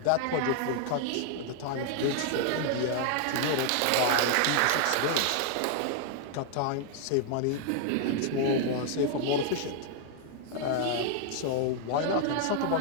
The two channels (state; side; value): different; both; correlation 0.00